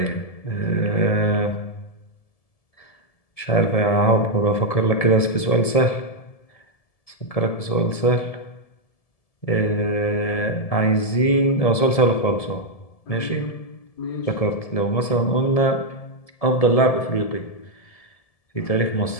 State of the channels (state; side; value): late; right; 1.7 ms